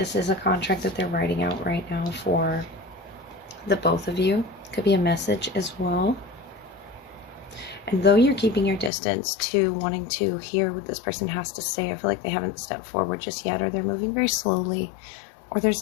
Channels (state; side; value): drops out; right; at 8.9 s